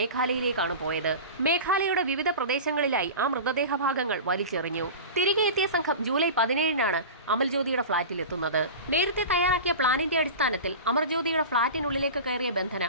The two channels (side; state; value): both; inverted; correlation -0.31